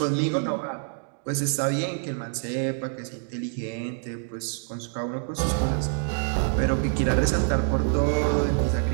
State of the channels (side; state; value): left; silent; digital silence